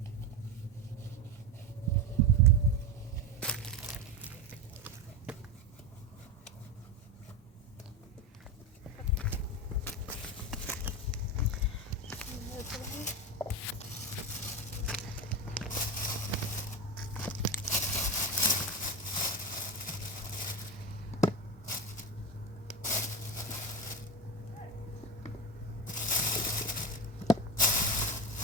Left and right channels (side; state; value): both; normal; correlation 0.18